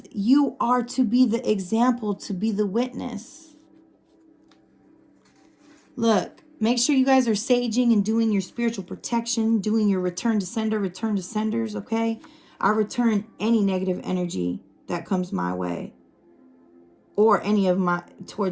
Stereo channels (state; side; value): identical; both; correlation 1.00